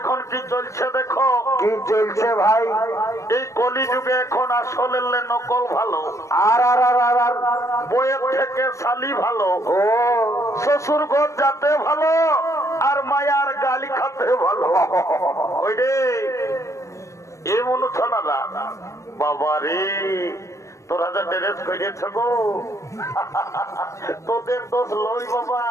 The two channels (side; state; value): right; late; 0.15 ms